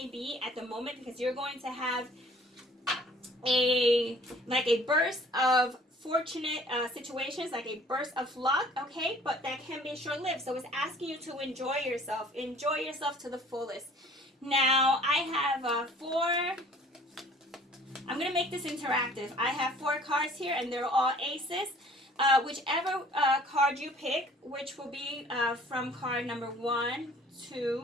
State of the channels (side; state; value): both; normal; correlation 0.53